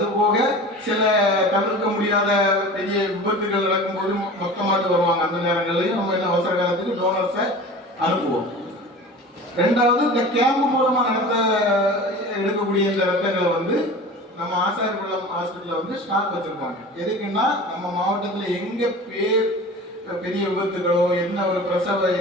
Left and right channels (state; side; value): normal; both; correlation 0.37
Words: சில தவிர்க்க முடியாத பெரிய விபத்துகள் நடக்கும்போது மொத்தமாட்டு வருவாங்க. அந்த நேரங்கள்லையும் நம்ம என்ன அவசர காலத்துக்கு டோனர்ஸை அனுப்புவோம். ரெண்டாவது, இந்த கேம்ப் மூலமா எடுக்கக்கூடிய இந்த ரத்தங்களை வந்து நம்ம ஆசாரிகுளம் ஹாஸ்பிட்டல்ல வந்து ஸ்டாக் வச்சிருப்பாங்க. எதுக்குன்னா நம்ம மாவட்டத்தில் எங்க பெரிய விபத்துகளோ என்ன ஒரு பிரசவ